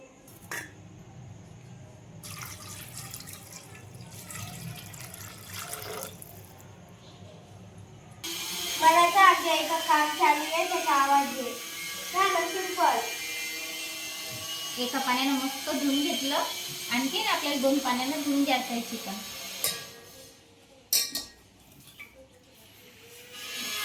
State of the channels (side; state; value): both; identical; correlation 1.00